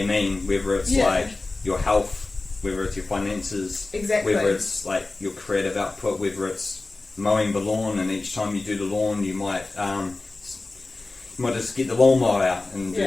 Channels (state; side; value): quieter; right; 3.3 dB